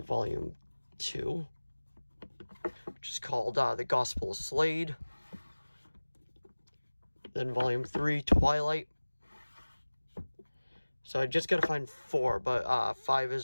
volume 2, which is called The Gospel of Slade. Then volume 3, Twilight. So I just gotta find 4, but 5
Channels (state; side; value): inverted; both; correlation -1.00